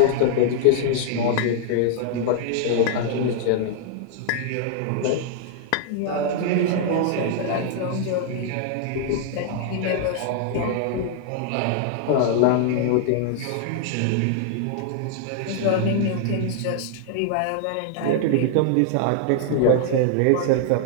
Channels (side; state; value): both; different; correlation 0.00